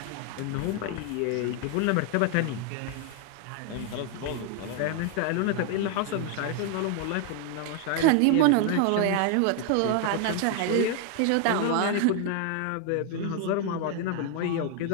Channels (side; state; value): both; different; correlation 0.00